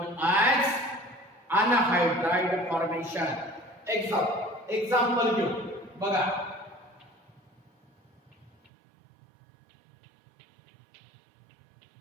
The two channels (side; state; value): left; drops out; at 8.7 s